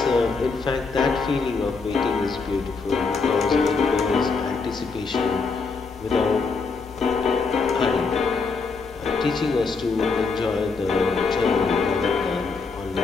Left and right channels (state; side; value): quieter; right; 4.5 dB